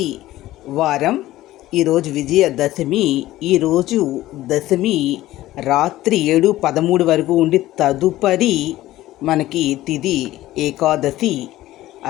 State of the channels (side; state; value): right; quieter; 15.6 dB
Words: వారం. ఈరోజు విజయదశమి. ఈరోజు దశమి రాత్రి 7:13 వరకు ఉండి తదుపరి మనకి తిథి ఏకాదశి.